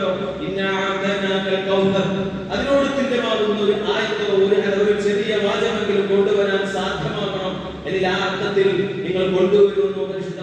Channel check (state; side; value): identical; both; correlation 1.00